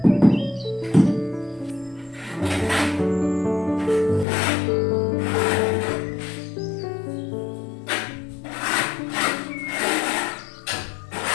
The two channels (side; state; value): right; drops out; at 4.2 s